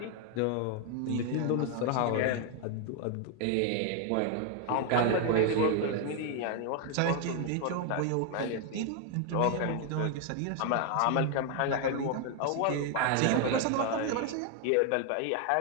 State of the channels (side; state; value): both; different; correlation 0.01